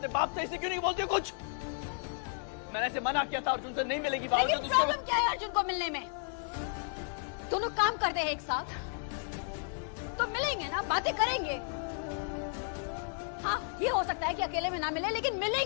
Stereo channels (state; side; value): silent; right; 56 dB below the other